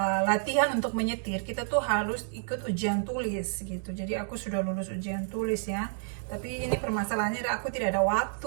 latihan untuk menyetir, kita tuh harus ikut ujian tulis gitu. Jadi aku sudah lulus ujian tulis ya, tapi ini permasalahannya aku tidak ada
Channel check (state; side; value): silent; left; digital silence